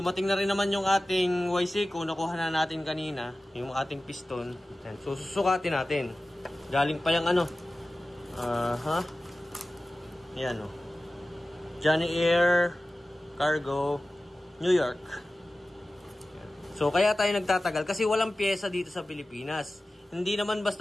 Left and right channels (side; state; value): both; normal; correlation 0.96